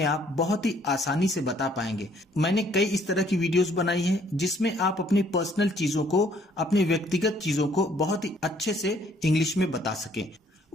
आप बहुत ही आसानी से बता पाएंगे। मैंने कई इस तरह की वीडियोस बनाई हैं जिसमें आप अपनी पर्सनल चीजों को, अपनी व्यक्तिगत चीजों को बहुत ही अच्छे से इंग्लिश में बता सकें।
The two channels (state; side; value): normal; both; correlation 0.63